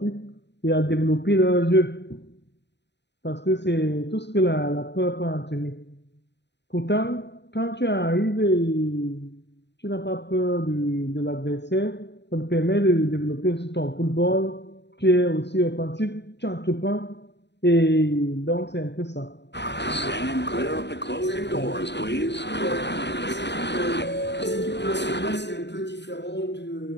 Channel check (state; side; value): late; right; 0.50 ms